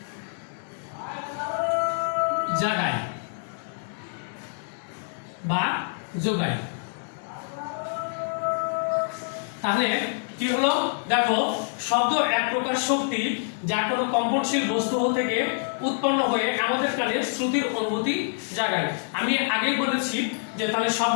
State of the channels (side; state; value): right; silent; digital silence